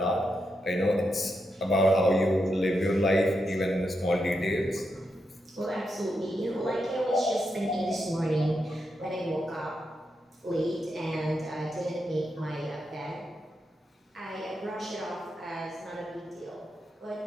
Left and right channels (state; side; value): normal; both; correlation 0.85